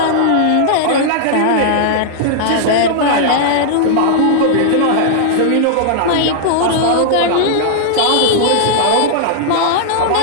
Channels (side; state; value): both; different; correlation -0.01